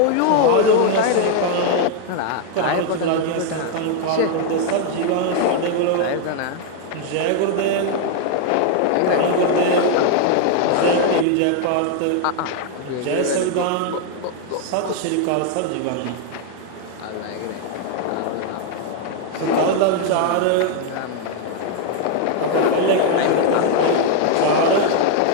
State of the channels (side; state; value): both; different; correlation 0.00